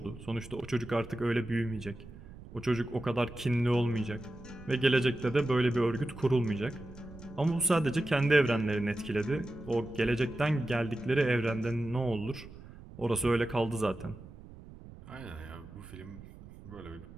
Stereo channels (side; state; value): right; noise; rumble, 17 dB below the sound